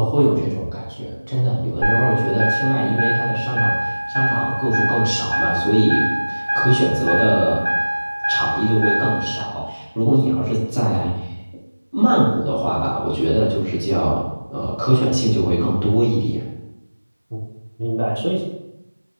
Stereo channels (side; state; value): both; inverted; correlation -1.00